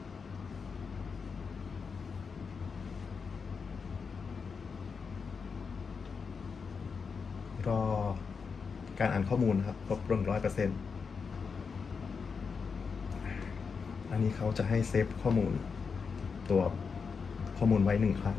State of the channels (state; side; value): quieter; right; 5.5 dB